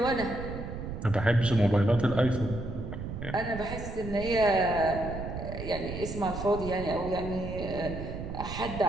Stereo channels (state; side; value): noise; right; rumble, 7 dB below the sound